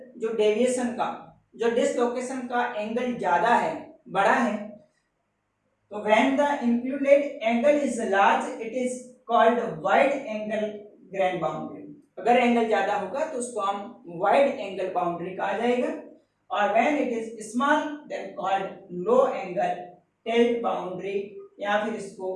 जो डेविएशन का, जो डिसलोकेशन का एंगल ज्यादा है, बड़ा है, तो when the included angle is large it is called wide angle grain boundary. अगर एंगल ज्यादा होगा तो उसको हम वाइड एंगल बाउंड्री कहा जाएगा, और when it is small then called low angle tilt boundary, या फिर इसको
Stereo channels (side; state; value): both; identical; correlation 1.00